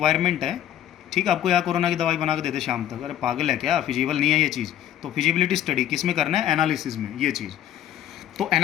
है। ठीक है, आपको यहाँ कोरोना की दवाई बना के दे दे शाम तक, अरे पागल है क्या, फिजिबल नहीं है ये चीज़। तो फिजिबिलिटी स्टडी किस में करना है? एनालिसिस में, ये चीज़। तो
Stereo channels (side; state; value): right; quieter; 11.5 dB